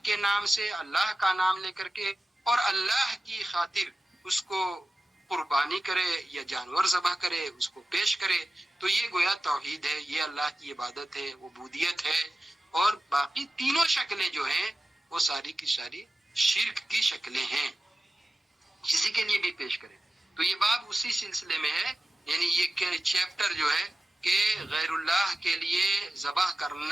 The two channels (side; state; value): both; normal; correlation 0.94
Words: کے نام سے، اللہ کا نام لے کر کے، اور اللہ کی خاطر اس کو قربانی کرے یا جانور ذبح کرے، اس کو پیش کرے، تو یہ گویا توحید ہے، یہ اللہ کی عبادت ہے، عبودیت ہے. اور باقی تینوں شکلیں جو ہیں وہ ساری کی ساری شرک کی شکلیں ہیں، کسی کے لیے بھی پیش کرے. تو یہ باب اسی سلسلے میں ہے، یعنی یہ چیپٹر جو ہے کہ غیر اللہ کے لیے ذبح